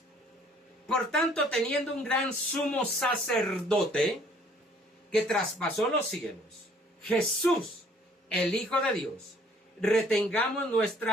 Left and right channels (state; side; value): normal; both; correlation 0.59